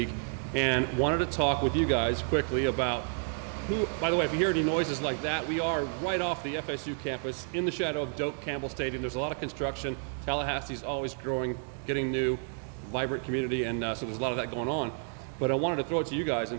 and wanted to talk with you guys quickly about who, by the way, if you hear any noises like that, we are right off the FSU campus in the shadow of Doak Campbell Stadium. There's a lot of construction. Tallahassee's always growing, getting new, vibrant community, and so there's a lot of that going on. But I wanted to throw it to you guys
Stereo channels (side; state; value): left; silent; 57 dB below the other